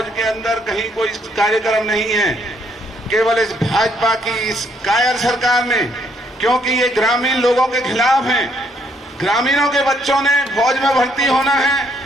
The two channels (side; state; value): both; normal; correlation 0.70